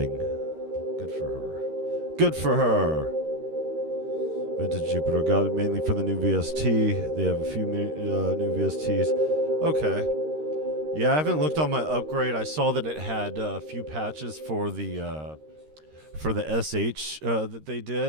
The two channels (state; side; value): late; left; 13 ms